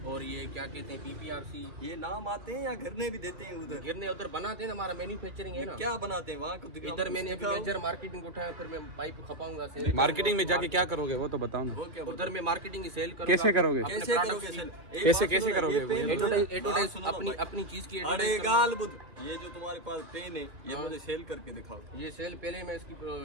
और ये क्या कहते हैं पीपीआरसी। ये नाम आते हैं या घरने भी देते हैं उधर? गिरने उधर बनाते हैं ना, हमारा मैन्युफैक्चरिंग है ना। क्या बनाते हैं वहाँ को दिखाओ। इधर मैंने अभी दिखाओ। मेजर मार्केटिंग उठाया, फिर मैं पाइप खपाऊंगा सेल। मार्केटिंग में जाके क्या करोगे वो तो बताओ ना। वो क्या उधर मैं मार्केटिंग की सेल करूंगा। कैसे करोगे? अपने कैसे products करोगे की। सर? एक कैसे- बात कैसे सुनो, करोगे ये वो? पेन जो है- एडवर्टाइज सुनो ना अपनी भाई। अपनी चीज की अरे एडवर्टाइज गाल बुध, ये जो तुम्हारे पास पेन है ये हाँ। मुझे सेल करके दिखाओ। ये सेल पहले मैं इसकी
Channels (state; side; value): late; left; 2.5 ms